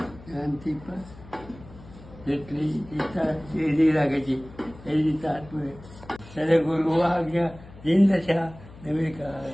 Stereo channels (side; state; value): left; noise; hum, 19 dB below the sound